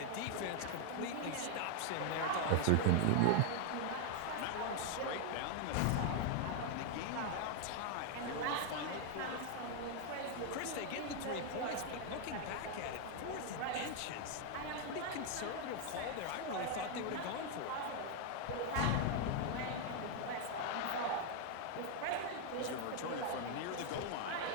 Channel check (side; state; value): both; different; correlation 0.00